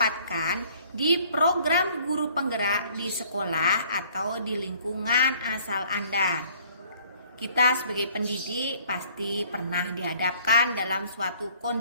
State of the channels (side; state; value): both; inverted; correlation -0.58